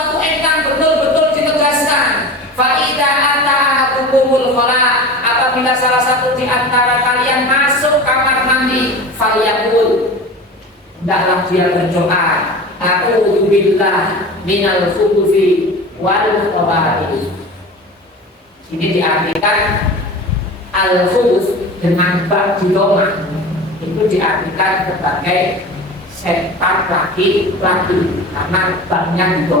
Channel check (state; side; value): normal; both; correlation 0.34